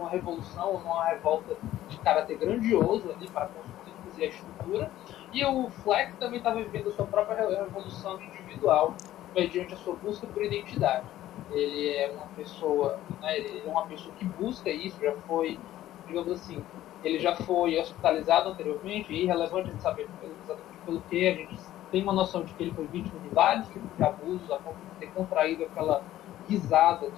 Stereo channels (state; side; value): quieter; right; 13.8 dB